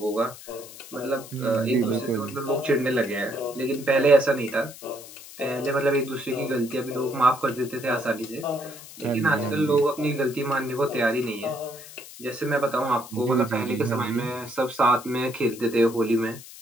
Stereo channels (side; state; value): left; noise; hiss, 16 dB below the sound